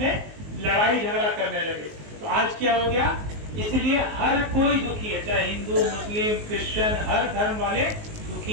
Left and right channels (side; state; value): left; late; 19 ms